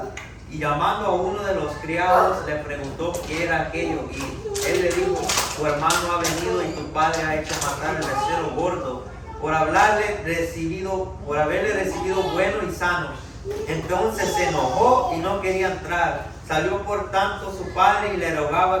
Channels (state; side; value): identical; both; correlation 1.00